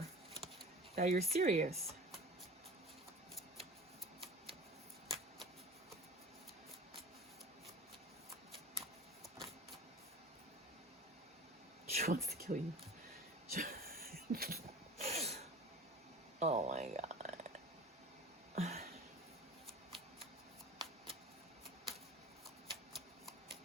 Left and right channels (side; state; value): both; normal; correlation 0.39